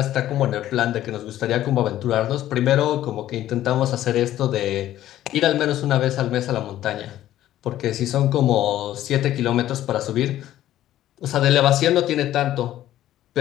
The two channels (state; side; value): quieter; right; 13.2 dB